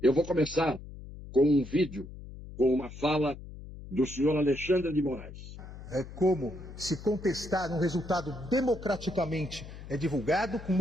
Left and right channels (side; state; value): left; noise; hum, 13 dB below the sound